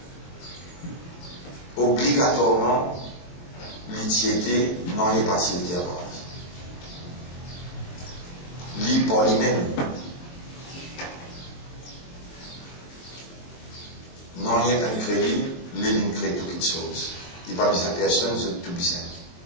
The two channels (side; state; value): right; late; 23 ms